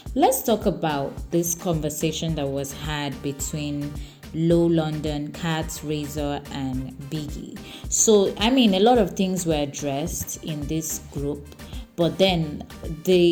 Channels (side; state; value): both; identical; correlation 1.00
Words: Let's talk about this conversation that was had between Low London, Kat, Razor, and Biggie. So, a lot of things were addressed in this group, but then